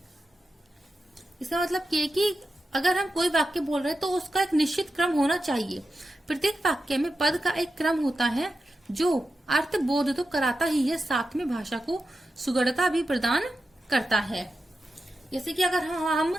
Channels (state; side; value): normal; both; correlation 0.90